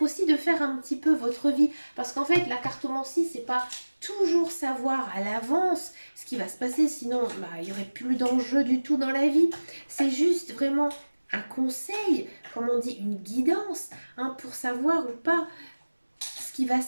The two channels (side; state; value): both; inverted; correlation -1.00